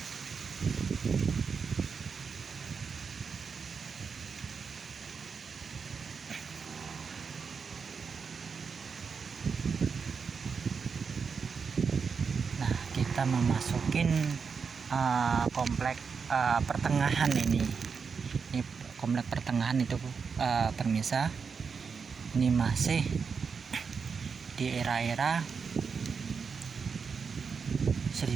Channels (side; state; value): left; quieter; 5.7 dB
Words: Kita memasukin komplek pertengahan ini komplek pertengahan itu, pemirsa. Ini masih di era-era